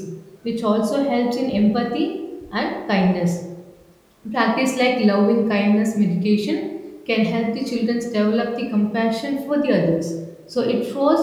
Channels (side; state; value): both; identical; correlation 1.00